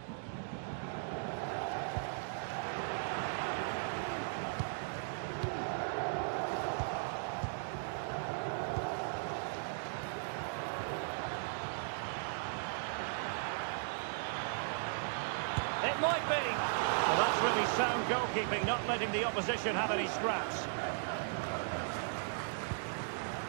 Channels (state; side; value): silent; left; digital silence